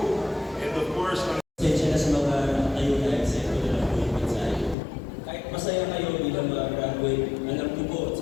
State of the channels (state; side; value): drops out; right; at 4.8 s